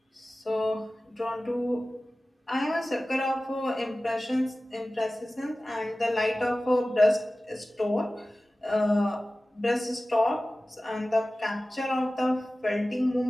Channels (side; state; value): both; normal; correlation 0.97